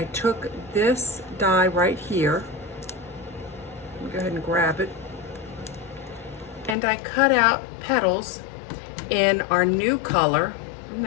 took this die right here, go ahead and grab it, and I cut out petals in our new color. Isn't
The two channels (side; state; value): right; drops out; at 6.8 s